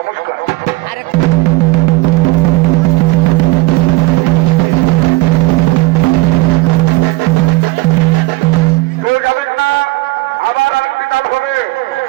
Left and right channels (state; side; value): quieter; left; 19.8 dB